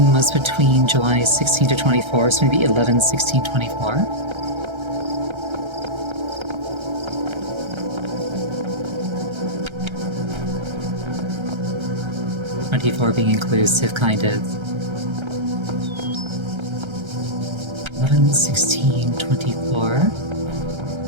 was between July 16 to 24, so maybe 11, 16, 24. Being inclusive, kind of. 11, 16, 24.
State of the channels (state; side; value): late; left; 1.3 ms